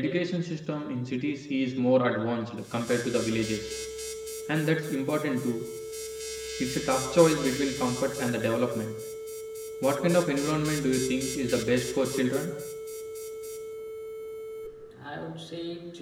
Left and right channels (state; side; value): identical; both; correlation 1.00